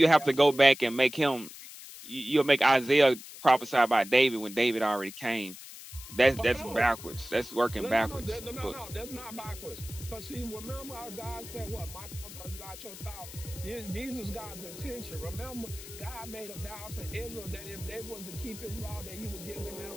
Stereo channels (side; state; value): left; noise; hiss, 14 dB below the sound